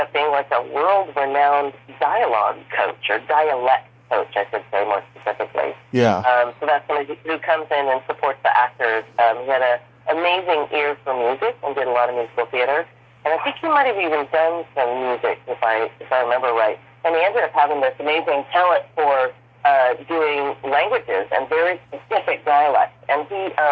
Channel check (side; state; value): both; identical; correlation 1.00